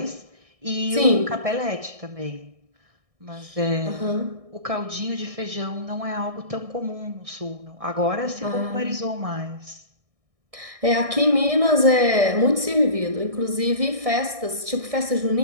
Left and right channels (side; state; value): left; late; 1.6 ms